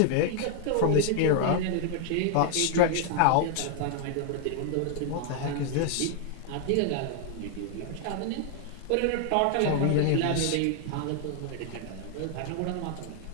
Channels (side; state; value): both; different; correlation 0.00